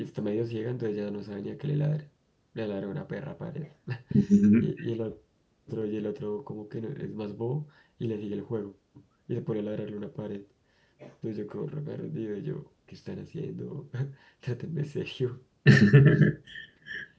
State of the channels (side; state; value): both; identical; correlation 1.00